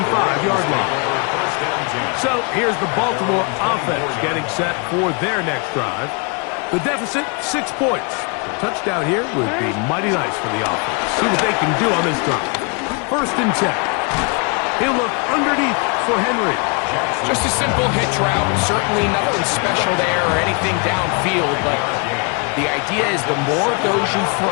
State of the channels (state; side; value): quieter; right; 34.1 dB